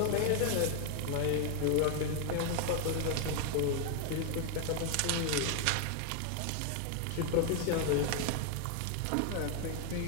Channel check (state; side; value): different; both; correlation 0.00